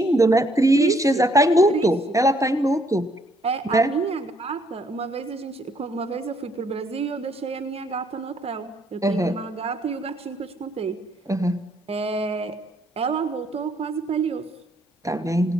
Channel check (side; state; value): both; normal; correlation 0.68